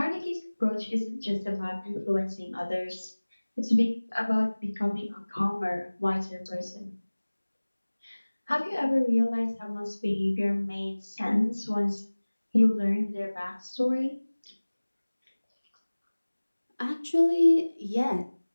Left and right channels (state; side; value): inverted; both; correlation -1.00